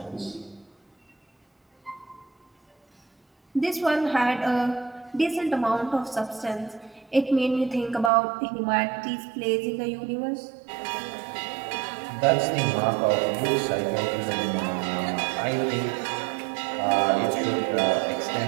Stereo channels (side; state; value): left; drops out; at 8.1 s